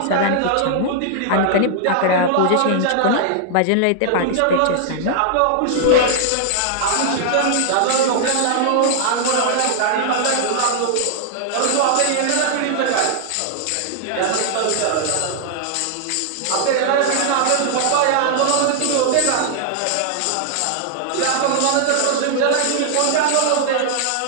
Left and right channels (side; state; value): both; different; correlation -0.01